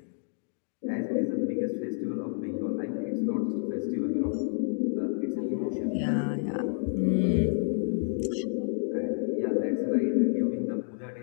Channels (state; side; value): silent; right; 58 dB below the other